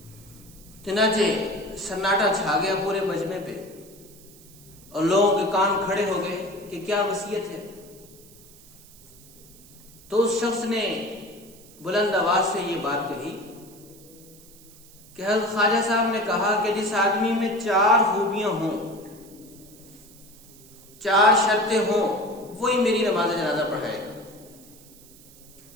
چنانچہ سناٹا چھا گیا پورے مجمع پہ اور لوگوں کے کان کھڑے ہو گئے کہ کیا وصیت ہے. تو اس شخص نے بلند آواز سے یہ بات کہی کہ حضرت خواجہ صاحب نے کہا کہ جس آدمی میں 4 خوبیاں ہوں, 4 شرطیں ہوں, وہی میری نماز جنازہ پڑھائے گا.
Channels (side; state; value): right; noise; hiss, 23 dB below the sound